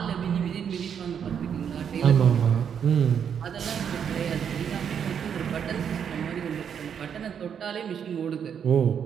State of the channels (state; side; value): quieter; left; 7.8 dB